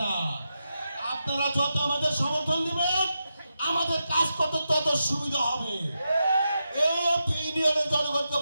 না। আপনারা যত আমাদের সমর্থন দিবেন আমাদের কাজ করতে তত সুবিধা হবে। এই ইউনিয়নের জনগণকে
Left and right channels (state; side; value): inverted; both; correlation -0.87